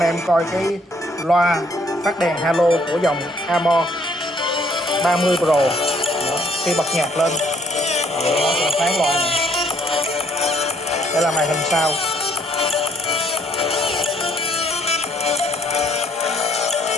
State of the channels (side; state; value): both; normal; correlation 0.65